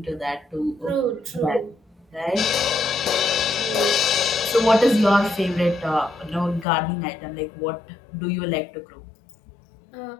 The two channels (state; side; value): drops out; right; at 6.7 s